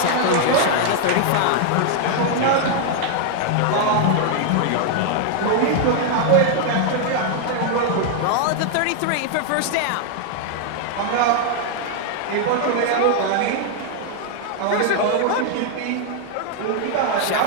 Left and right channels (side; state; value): both; different; correlation 0.00